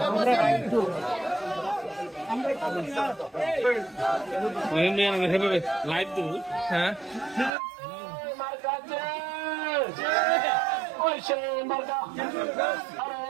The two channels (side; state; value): left; drops out; at 7.5 s